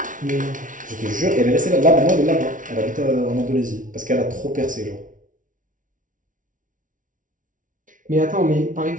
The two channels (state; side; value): late; left; 0.38 ms